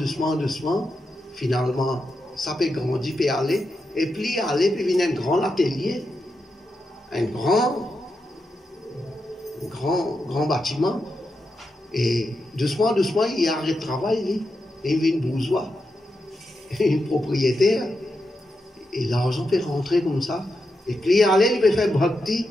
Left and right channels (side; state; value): both; normal; correlation 0.87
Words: finalement, ça peut grandir, peut aller, et puis venir un grand atelier, un grand bâtiment, et doucement, il arrête de travailler, il vient bourgeois, un propriétaire, et l'argent peut rentrer comme ça, et puis il peut faire bhakti,